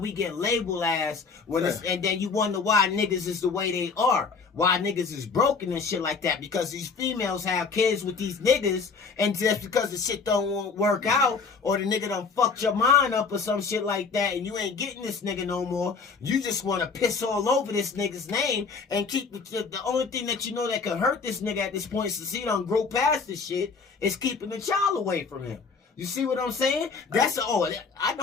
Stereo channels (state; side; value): quieter; right; 5.0 dB